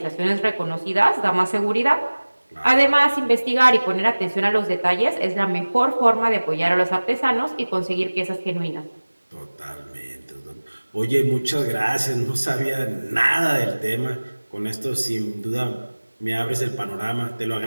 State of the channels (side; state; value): both; inverted; correlation -1.00